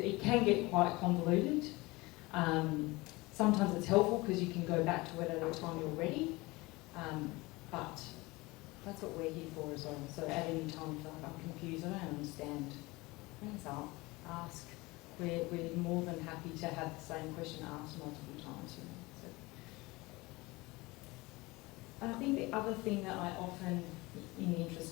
can get quite convoluted. Sometimes it's helpful because you can go back to it at a time you're ready, but that's what we're here for as well. So at any time, if you're like, I'm confused, I don't understand, bring us up, ask. We're more than happy to have the same question asked multiple times. You know, so. And I think the other thing that I often, in the interest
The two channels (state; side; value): quieter; right; 22.6 dB